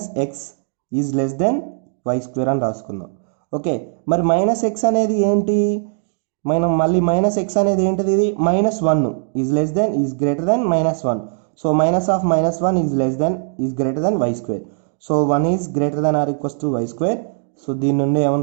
is less then y square అని రాసుకుందాం. ఓకే, మరి -x అనేది ఏంటి, మనం మళ్ళీ -x అనేది ఏంటిది, ఇది -1 is less than is greater than -1. So -1 is greater than y square. So 1 is greater than or equals to y square. So దీని నుండి ఏమని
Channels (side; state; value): left; silent; digital silence